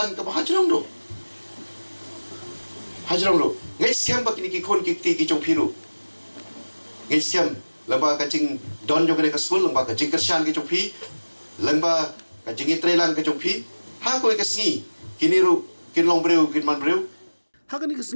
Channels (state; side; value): inverted; both; correlation -1.00